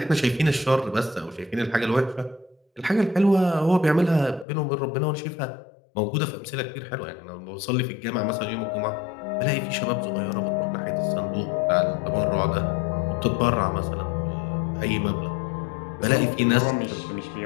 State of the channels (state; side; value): drops out; right; at 4.5 s